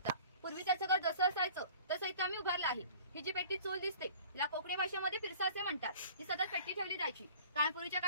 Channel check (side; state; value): both; inverted; correlation -0.46